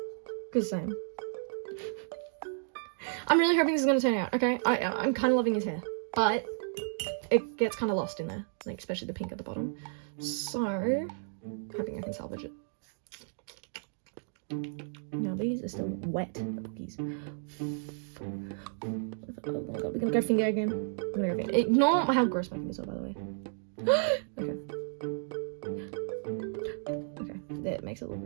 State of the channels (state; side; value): silent; left; digital silence